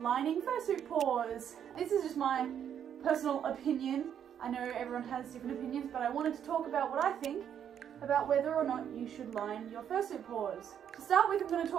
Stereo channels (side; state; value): left; quieter; 9.0 dB